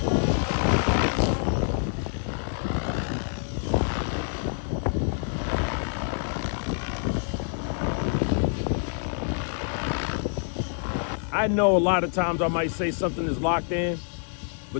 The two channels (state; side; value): silent; right; 60 dB below the other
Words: I know a lot of times I might say something is locked in,